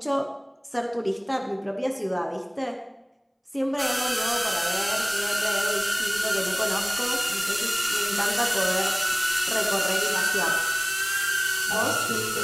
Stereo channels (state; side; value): identical; both; correlation 1.00